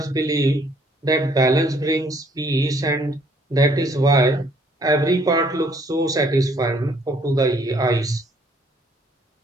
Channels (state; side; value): normal; both; correlation 0.63